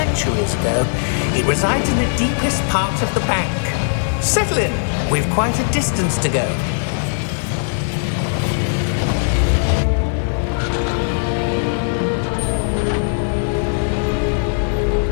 ago. It resides in the deepest part of the bank. Settle in. We've quite a distance to go.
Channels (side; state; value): right; silent; digital silence